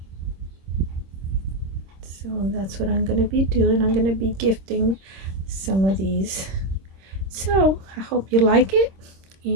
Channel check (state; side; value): late; left; 26 ms